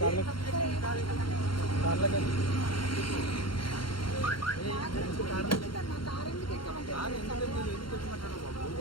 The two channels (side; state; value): right; late; 0.73 ms